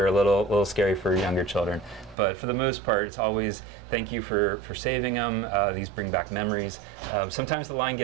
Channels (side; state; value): left; drops out; at 2.1 s